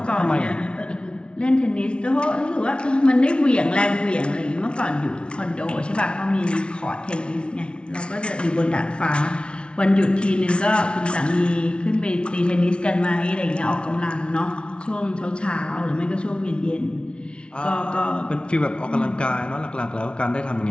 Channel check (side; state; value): right; late; 0.058 ms